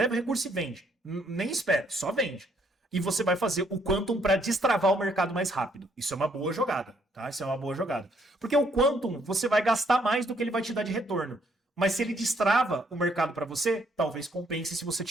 o recurso e vende. Nem espera, só vende. E você vai fazer o Quantum para destravar o mercado mais rápido. Isso é uma boa jogada, tá? Isso é uma boa jogada. Porque o Quantum, você vai gastar mais do que ele vai te dar de retorno. Mas se ele destrava o mercado para você, talvez compense se você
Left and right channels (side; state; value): both; normal; correlation 0.69